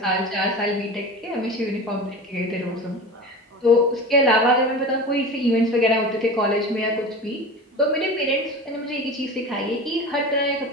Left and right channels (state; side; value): normal; both; correlation 0.32